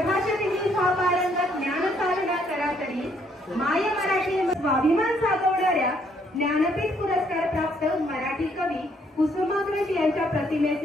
हा पारंगत ज्ञान साधना करा तरी, माय मराठी स्वाभिमान साधवणाऱ्या ज्ञानपीठ पुरस्कार प्राप्त मराठी कवी कुसुमाग्रज यांच्या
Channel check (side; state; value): both; normal; correlation 0.68